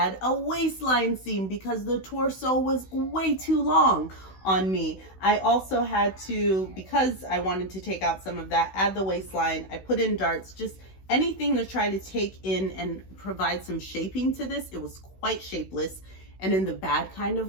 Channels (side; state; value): right; late; 16 ms